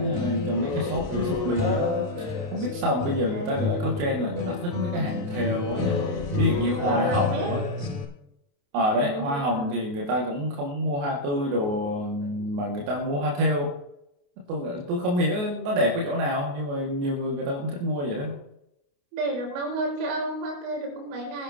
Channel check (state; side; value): late; left; 28 ms